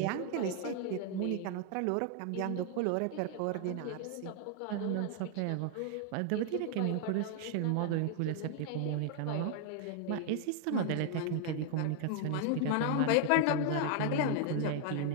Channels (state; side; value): different; both; correlation 0.00